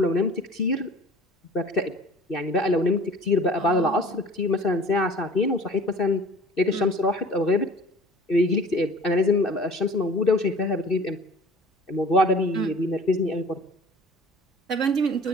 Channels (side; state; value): both; normal; correlation 0.46